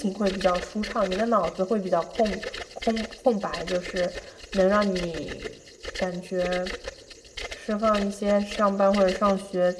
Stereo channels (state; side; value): identical; both; correlation 1.00